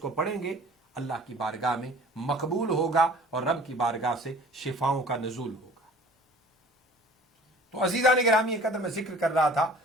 پڑھیں گے، اللہ کی بارگاہ میں مقبول ہوگا اور رب کی بارگاہ سے شفاؤں کا نزول ہوگا۔ تو عزیزان گرامی، ایک قدر میں ذکر کر رہا تھا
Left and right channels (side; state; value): both; normal; correlation 0.48